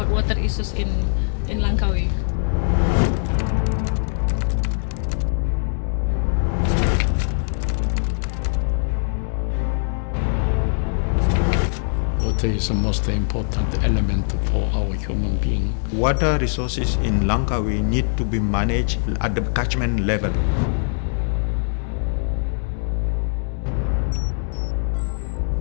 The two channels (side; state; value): right; silent; digital silence